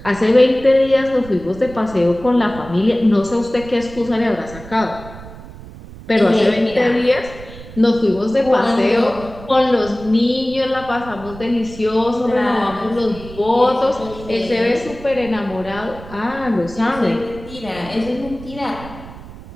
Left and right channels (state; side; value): noise; right; rumble, 16 dB below the sound